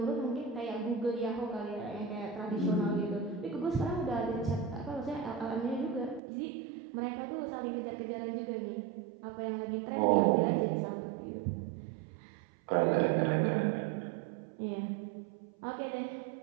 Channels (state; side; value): drops out; left; at 6.2 s